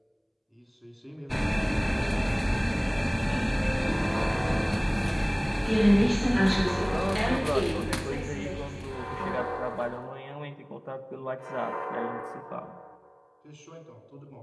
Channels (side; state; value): both; identical; correlation 1.00